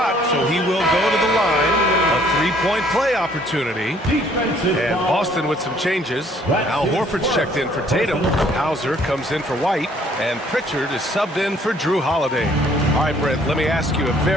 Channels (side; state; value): both; normal; correlation 0.61